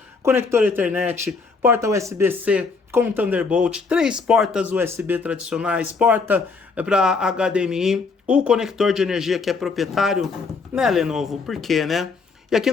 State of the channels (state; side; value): quieter; right; 4.5 dB